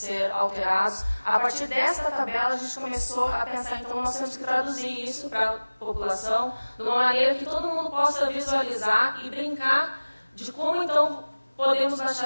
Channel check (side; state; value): both; inverted; correlation -1.00